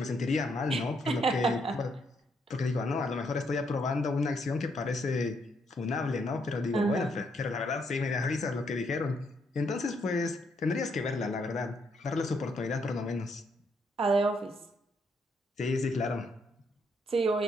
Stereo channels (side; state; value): both; normal; correlation 0.74